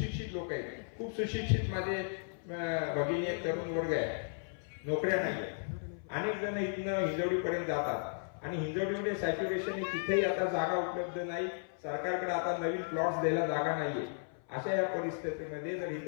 लोक आहेत, खूप सुशिक्षित माझे भगिनी आहेत, तरुण वर्ग आहे, नोकऱ्या नाही आहेत. अनेक जण इथनं हिंजवडीपर्यंत जातात आणि हिंजवडीमध्ये सॅच्युरेशन तिथेही आता जागा उपलब्ध नाही. सरकारकडे आता नवीन प्लॉट्स द्यायला जागा नाहीये. अशा या परिस्थितीमध्ये जर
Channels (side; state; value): right; silent; 54 dB below the other